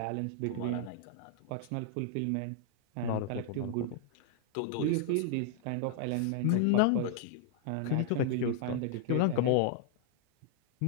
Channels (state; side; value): different; both; correlation -0.01